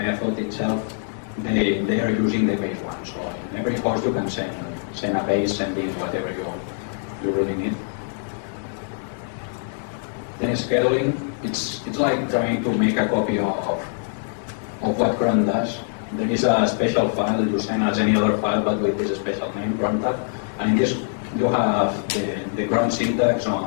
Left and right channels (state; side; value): silent; right; digital silence